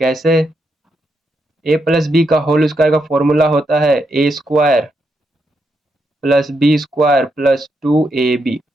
कैसे, a प्लस बी का होल स्क्वायर का फॉर्मूला होता है a² plus b² plus 2ab।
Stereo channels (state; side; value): normal; both; correlation 0.81